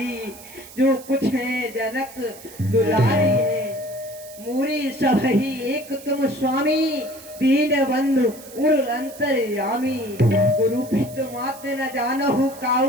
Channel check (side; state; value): right; noise; hiss, 18 dB below the sound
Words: जो कुछ है जनक दुलारी है। मूरी सब ही एक तुम स्वामी, दीन बंधु उर अंतर्यामी। गुरु पित मात न जानहु